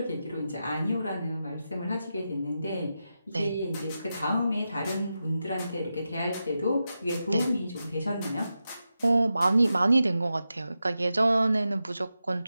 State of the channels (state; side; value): inverted; both; correlation -0.90